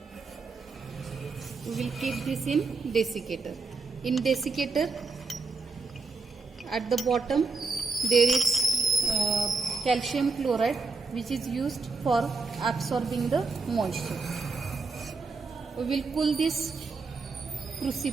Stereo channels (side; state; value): left; quieter; 4.2 dB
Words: We will keep this in desiccator. In desiccator, at the bottom there is calcium chloride, which is used for absorbing the moisture. We will cool this